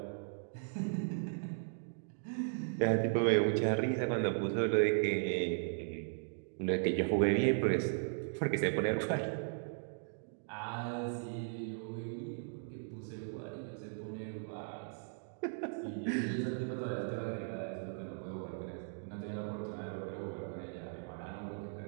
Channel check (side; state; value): left; silent; digital silence